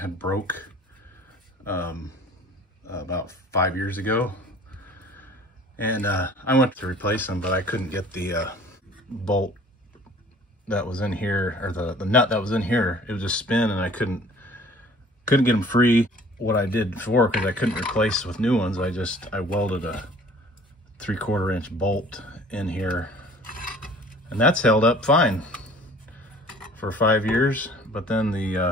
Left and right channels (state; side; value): normal; both; correlation 0.50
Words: broke about 5 years ago. And I went to replace them, but I couldn't get the bolt that was in here, or the nut that was in here. It would just spin, and I couldn't get them free. What I did before, because I couldn't replace with new ones, I welded a 3/4 inch bolt in here, and that's held up fine for 5 years. But then